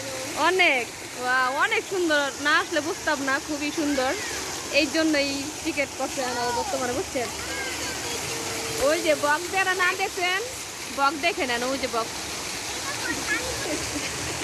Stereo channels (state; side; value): identical; both; correlation 1.00